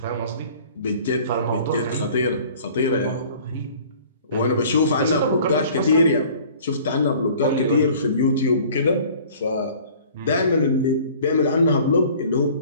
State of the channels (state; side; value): inverted; both; correlation -0.49